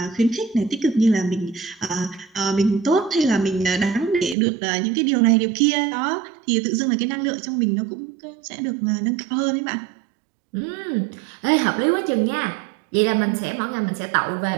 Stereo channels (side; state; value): left; drops out; at 4.4 s